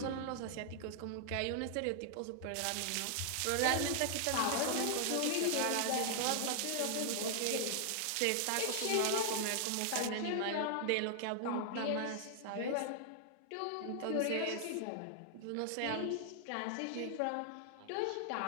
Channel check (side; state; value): both; different; correlation -0.01